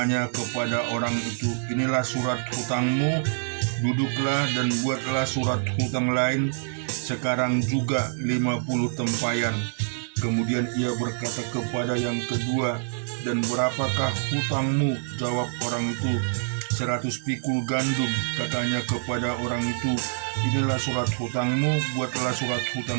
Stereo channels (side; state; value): left; silent; 56 dB below the other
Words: kepada orang itu, inilah surat hutangmu, duduklah dan buatlah surat hutang lain, sekarang juga 50 tempayan. Kemudian ia berkata kepada yang kedua, dan berapakah hutangmu? Jawab orang itu, 100 pikul gandum. Katanya kepada orang itu, inilah surat hutangmu, buatlah surat